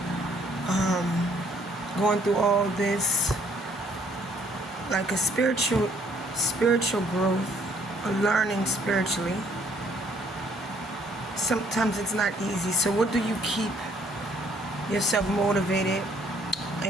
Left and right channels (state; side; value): normal; both; correlation 0.64